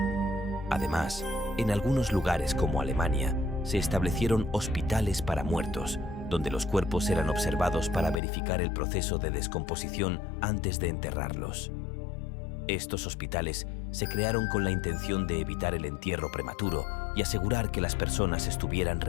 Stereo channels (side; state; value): right; drops out; at 8.2 s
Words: Además, en algunos lugares como Alemania, se establecieron hospitales para muertos, donde los cuerpos eran observados para verificar el proceso de descomposición antes de enterrarlos. Estos hospitales se crearon con la intención de evitar el entierro prematuro y asegurar que las personas estuvieran